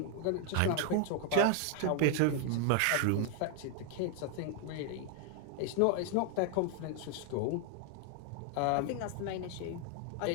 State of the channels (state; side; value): different; both; correlation 0.00